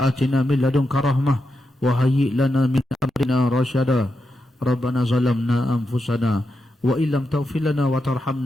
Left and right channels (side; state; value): both; normal; correlation 0.86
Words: atina min ladunka rahmah wa hayyi' lana min amrina rasyada. Rabbana zalamna anfusana wa illam taghfir lana wa